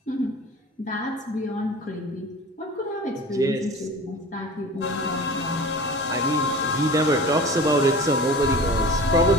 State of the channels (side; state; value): both; normal; correlation 0.38